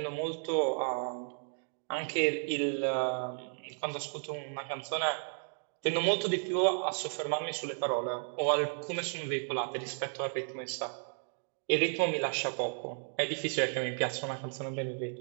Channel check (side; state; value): left; silent; 55 dB below the other